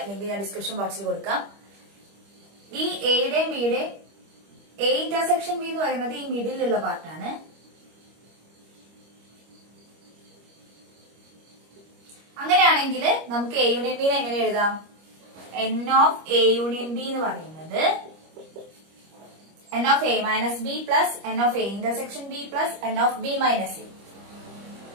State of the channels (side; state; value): left; late; 25 ms